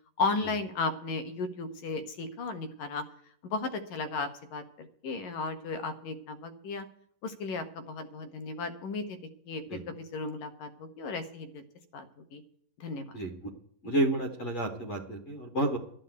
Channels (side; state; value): right; late; 11 ms